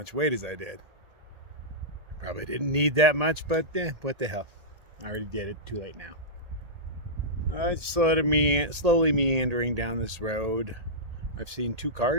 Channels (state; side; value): late; left; 1.8 ms